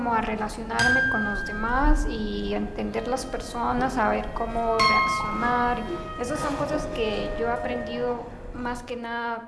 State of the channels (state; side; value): identical; both; correlation 1.00